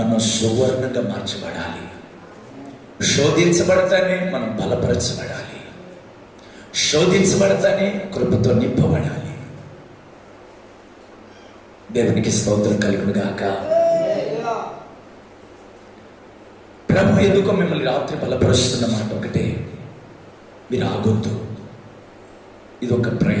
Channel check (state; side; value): identical; both; correlation 1.00